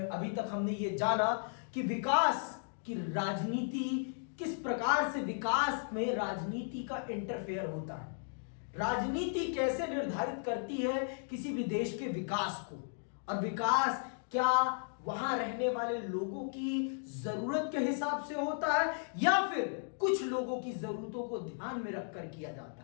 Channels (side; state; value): right; silent; digital silence